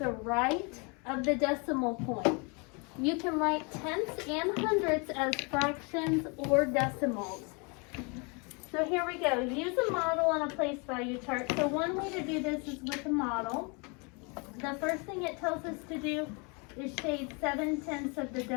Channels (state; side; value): quieter; right; 32.0 dB